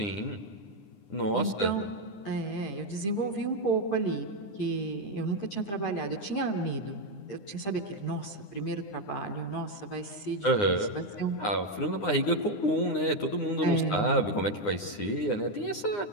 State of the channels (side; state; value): right; late; 9.8 ms